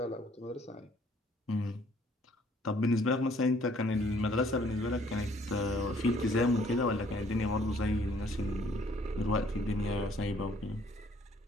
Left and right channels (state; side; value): normal; both; correlation 0.61